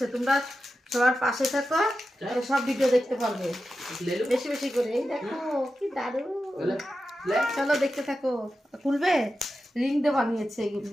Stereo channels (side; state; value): both; normal; correlation 0.91